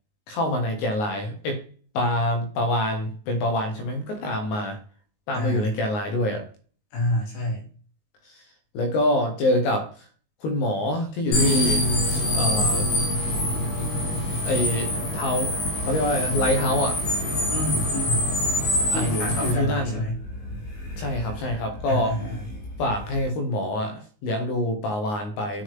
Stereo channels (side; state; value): right; late; 19 ms